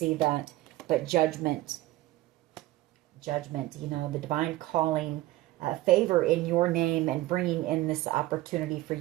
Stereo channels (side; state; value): left; quieter; 17.0 dB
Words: that. But judgment. Judgment, you know, the divine calling, favor in your name and bringing in this opportunity for